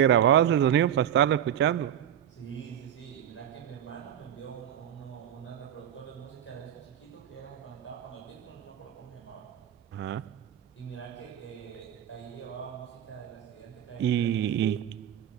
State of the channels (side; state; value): left; quieter; 10.2 dB